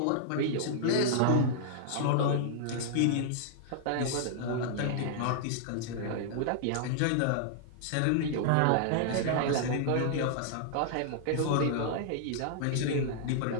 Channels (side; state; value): both; different; correlation -0.01